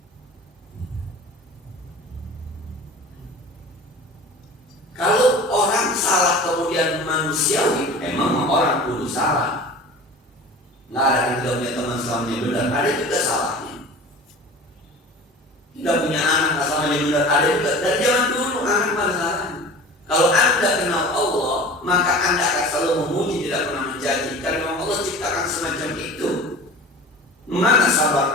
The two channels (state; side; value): normal; both; correlation 0.39